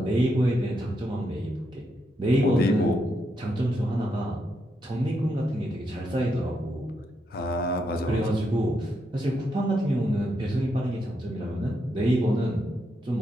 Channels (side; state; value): both; normal; correlation 0.81